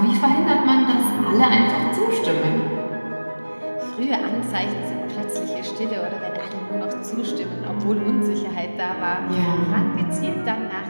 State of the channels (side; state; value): both; inverted; correlation -1.00